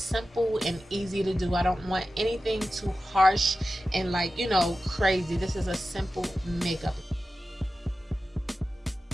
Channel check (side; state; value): both; normal; correlation 0.93